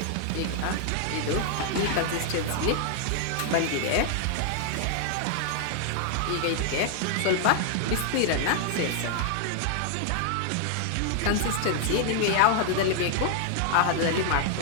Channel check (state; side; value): different; both; correlation 0.00